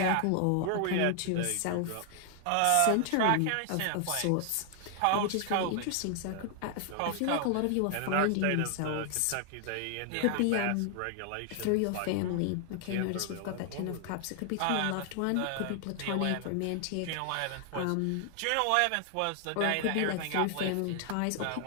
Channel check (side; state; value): both; different; correlation 0.00